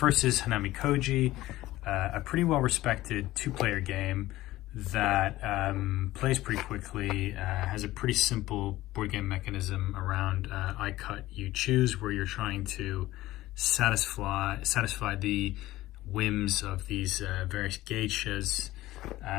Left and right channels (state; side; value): quieter; right; 16.6 dB